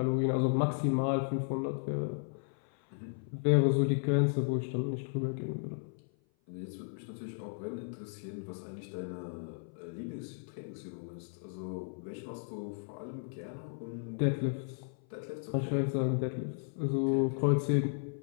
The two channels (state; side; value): silent; right; 55 dB below the other